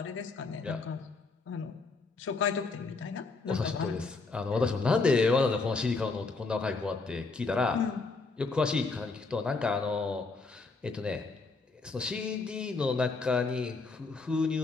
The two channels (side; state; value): right; quieter; 4.0 dB